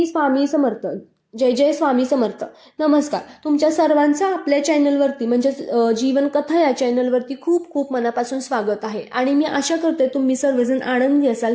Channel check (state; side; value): identical; both; correlation 1.00